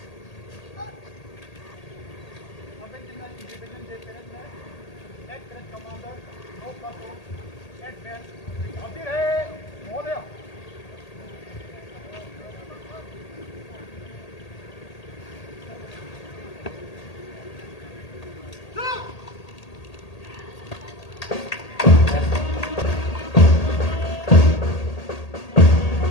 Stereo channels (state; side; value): late; right; 1.8 ms